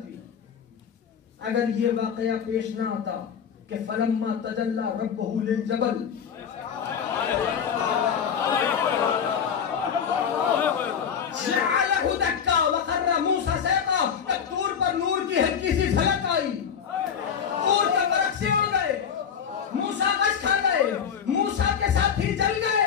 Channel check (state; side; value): quieter; right; 7.5 dB